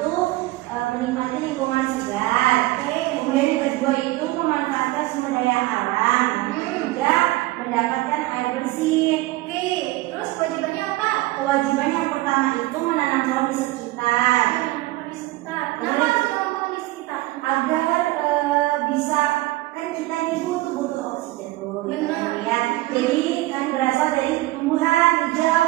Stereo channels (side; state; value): left; quieter; 18.6 dB